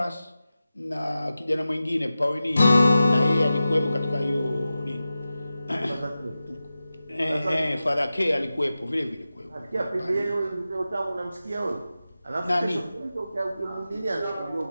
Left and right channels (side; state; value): both; inverted; correlation -0.94